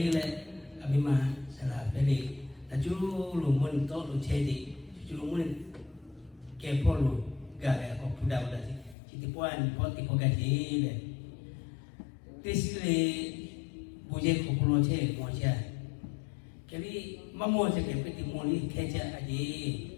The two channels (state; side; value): drops out; right; at 9.0 s